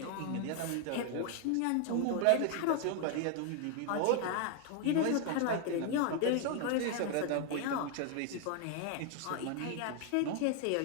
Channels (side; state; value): both; different; correlation 0.00